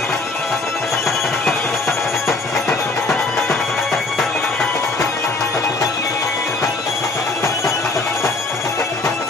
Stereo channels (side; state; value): right; quieter; 3.4 dB